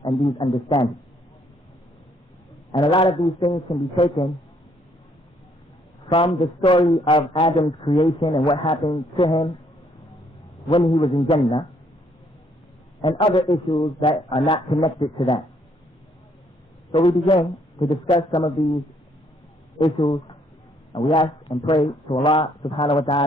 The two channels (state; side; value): normal; both; correlation 0.68